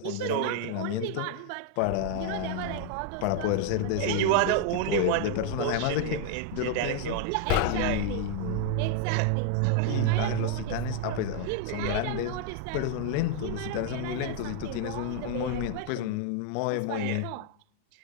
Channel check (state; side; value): different; both; correlation 0.00